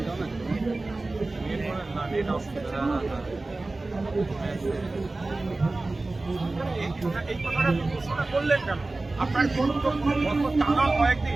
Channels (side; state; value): left; quieter; 3.2 dB